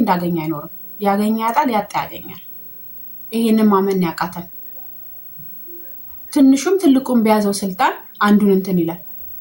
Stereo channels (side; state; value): both; identical; correlation 1.00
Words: እንዳገኘ አይኖርም። ያገኘ ያጣል፣ ያጣ ያገኛል። ይሄንን ማመን ያቃተን። ትንሹም ትልቁም በያዘው ስልጣን አንዱን እንትን ይላል።